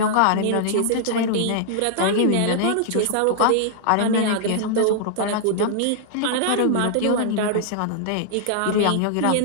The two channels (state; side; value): different; both; correlation -0.01